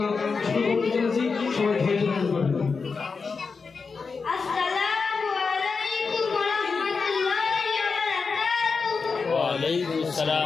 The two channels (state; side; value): quieter; right; 4.9 dB